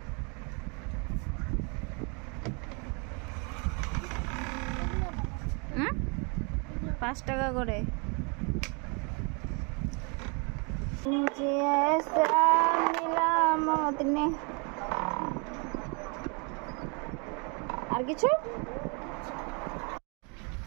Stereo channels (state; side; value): quieter; left; 34.2 dB